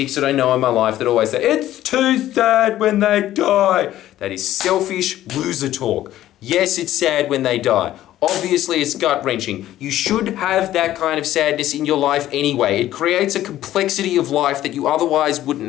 that I know in my life that always say, it's too sad when they die. That is selfish loser talk. Yes, it's sad when they die. Obviously, it's gut-wrenching. You should have that kind of sadness in your life anyway. It creates a complexity of life that you otherwise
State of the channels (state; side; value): quieter; right; 13.5 dB